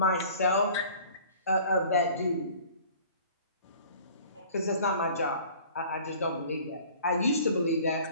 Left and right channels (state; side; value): inverted; both; correlation -0.48